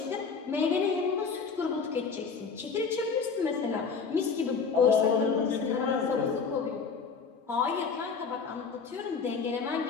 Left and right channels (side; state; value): right; quieter; 5.4 dB